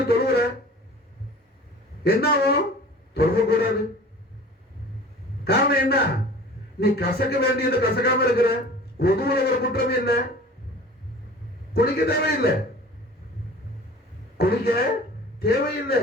தொழுவுற, என்ன ஆகும்? தொழுவ கூடாது. காரணம் என்ன? நீ கசக்க வேண்டியது கசக்காம இருக்கிற. ஒதுவுல ஒரு குற்றமே இல்லை, குளிக்க தேவையில்லை.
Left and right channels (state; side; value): normal; both; correlation 0.43